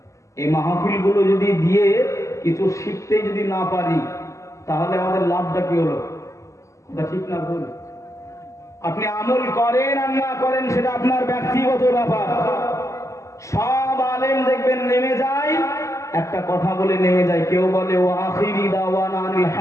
এই মাহফিল গুলো যদি দিয়ে কিছু শিখতে যদি না পারি তাহলে আমাদের লাভটা কি হলো? এটা ঠিক না ভুল? আপনি আমল করেন আর না করেন সেটা আপনার ব্যক্তিগত ব্যাপার। সব আলেম দেখবেন নেমে যায়, একটা কথা বলে নেমে যায়। কেউ বলে ও আখিরি দাওয়ানা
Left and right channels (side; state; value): right; late; 0.15 ms